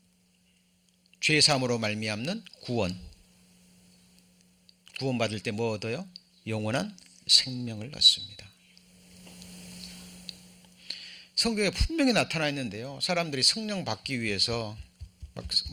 죄사함으로 말미암는 구원. 구원 받을 때 뭐 얻어요? 영원한 생명을 얻습니다. 성경에 분명히 나타나 있는데요 사람들이 성령 받기 위해서 막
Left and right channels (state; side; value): identical; both; correlation 1.00